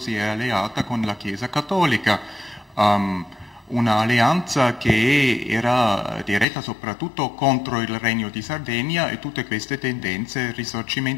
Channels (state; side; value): drops out; right; at 6.5 s